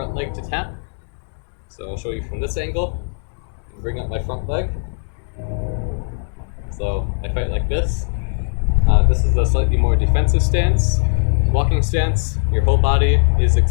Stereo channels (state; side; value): silent; right; digital silence